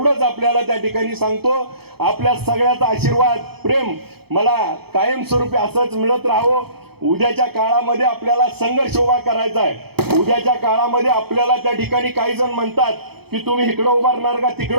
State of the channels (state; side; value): late; left; 0.96 ms